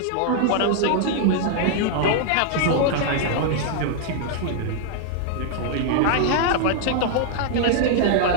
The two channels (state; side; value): different; both; correlation -0.01